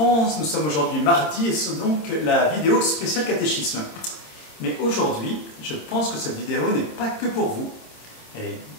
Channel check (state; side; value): late; right; 26 ms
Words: nous sommes aujourd'hui mardi et c'est donc la vidéo spéciale catéchisme. Mais aujourd'hui, je pense que cette vidéo n'est pas que pour vous. Elle est